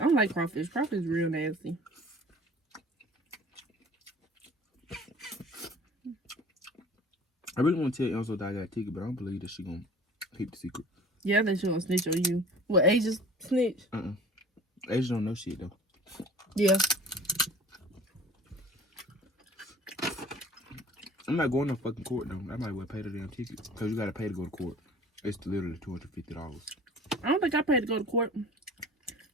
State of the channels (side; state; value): both; normal; correlation 0.45